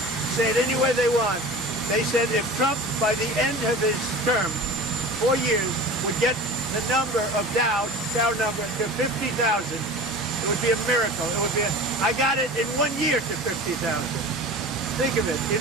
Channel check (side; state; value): both; normal; correlation 0.37